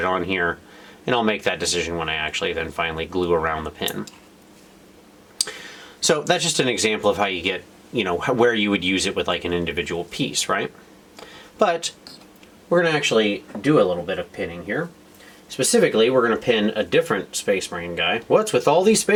on here. And I'll make that decision when I actually then finally glue around the pin. So that's just an example of how you get, where you would use it with like an individual piece, right? But we're going to actually do a little bit of pinning here. Specifically, we're going to pin a different Space Marine guy. What's with all these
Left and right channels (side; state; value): both; identical; correlation 1.00